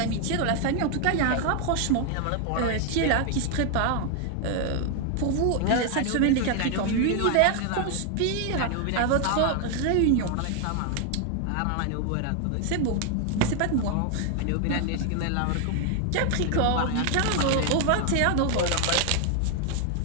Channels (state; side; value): different; both; correlation 0.00